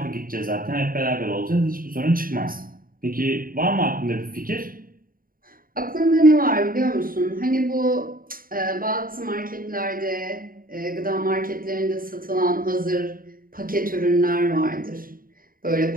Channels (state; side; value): late; left; 0.41 ms